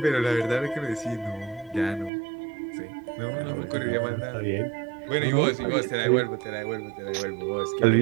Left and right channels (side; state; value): left; drops out; at 2.1 s